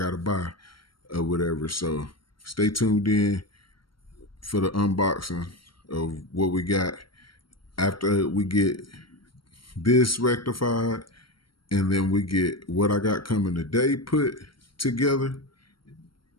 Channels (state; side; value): late; right; 0.73 ms